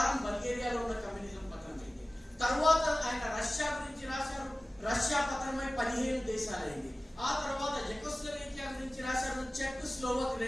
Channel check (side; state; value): both; normal; correlation 0.97